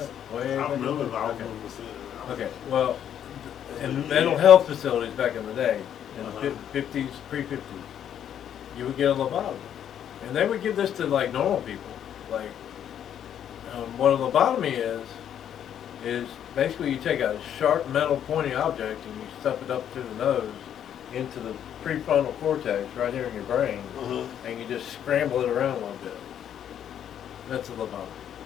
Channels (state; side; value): quieter; right; 9.7 dB